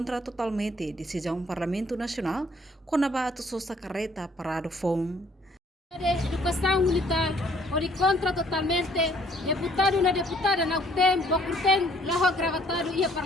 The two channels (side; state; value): both; normal; correlation 0.62